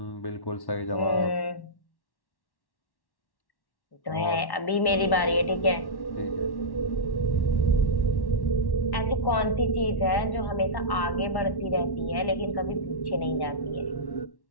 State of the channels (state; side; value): late; right; 1.1 ms